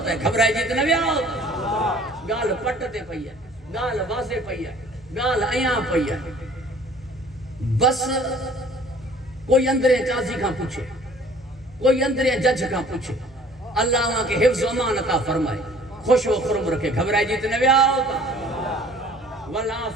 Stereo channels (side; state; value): both; normal; correlation 0.52